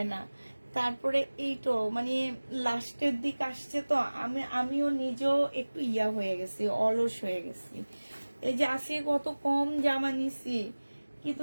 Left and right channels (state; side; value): inverted; both; correlation -1.00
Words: না। তারপরে এইটো মানে লাস্টের দিক আসছে তো, আমিও নিজেও একটু ইয়া হয়ে গেছি, অলস হয়ে গেছি। এই যে আসে কত কম জামা নিছি,